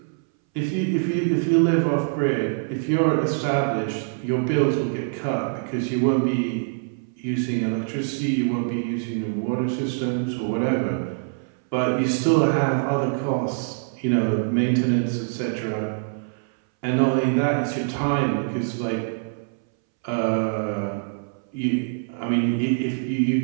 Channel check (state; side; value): silent; left; 62 dB below the other